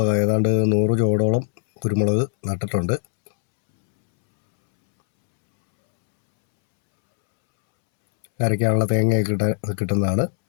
ഏതാണ്ട് 100 ചോടോളം കുരുമുളക് നട്ടിട്ടുണ്ട്. അരയ്ക്കാനുള്ള തേങ്ങയൊക്കെ കിട്ടുന്നതാണ്.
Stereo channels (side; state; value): right; silent; 66 dB below the other